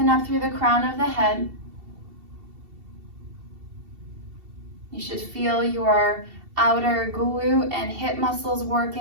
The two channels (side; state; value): left; late; 2.7 ms